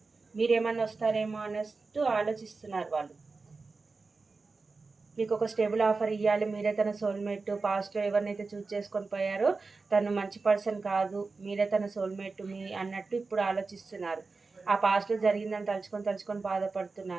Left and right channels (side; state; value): left; quieter; 4.1 dB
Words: మీరేమన్నా వస్తారేమో అన్నట్టు ఆలోచిస్తున్నారు వాళ్ళు. మీకు ఒక స్టేబుల్ ఆఫర్ ఇవ్వాలి, మీరే తన సోల్మేట్. పాస్ట్లో ఎవరినైతే చూస్ చేసుకొని పోయారో తను మంచి పర్సన్ కాదు, మీరే తన సోల్మేట్ మీ అన్నట్టు ఇప్పుడు ఆలోచిస్తున్నారు. ఆ పాస్ట్లో జరిగిందని తలుచుకొని